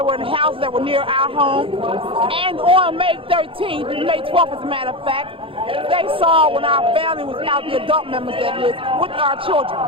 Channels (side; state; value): left; late; 0.26 ms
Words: in houses that were near our home. And on May 13th, May 12th as a matter of fact, they saw when our family was out, the adult members that is, with our children.